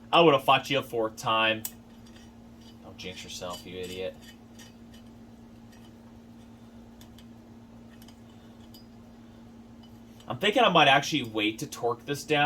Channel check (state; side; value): identical; both; correlation 1.00